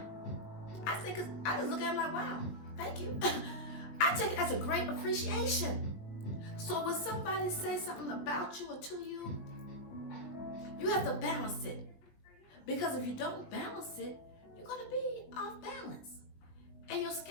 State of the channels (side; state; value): right; late; 20 ms